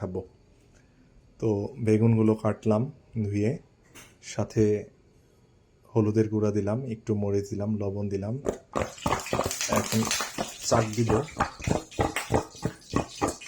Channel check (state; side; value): identical; both; correlation 1.00